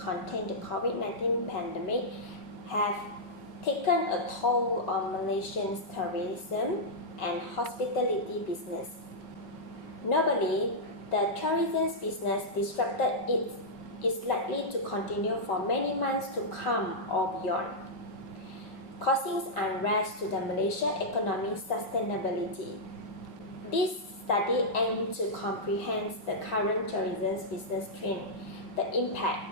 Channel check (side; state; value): right; late; 5.4 ms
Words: the COVID-19 pandemic have taken a toll on Malaysian tourism and hospitality business. Notably, the tourism business disrupted is likely to continue for many months to come or beyond, causing unrest to the Malaysian economic sustainability. This study aims to comprehend the current tourism business trend, the impact,